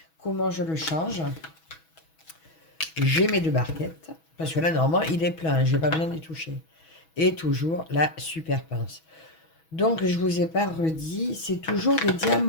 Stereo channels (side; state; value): right; late; 6.2 ms